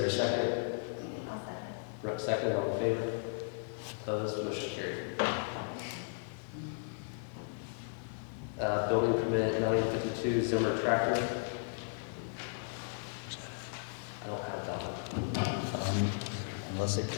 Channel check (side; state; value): right; silent; digital silence